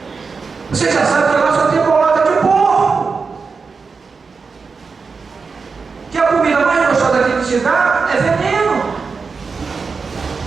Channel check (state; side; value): quieter; left; 4.9 dB